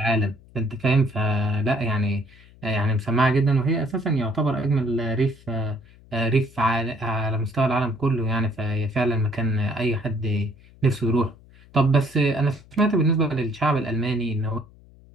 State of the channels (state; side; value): noise; left; hum, 25 dB below the sound